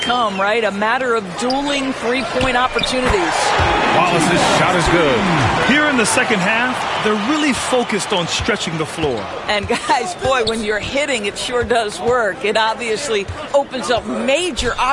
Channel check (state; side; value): identical; both; correlation 1.00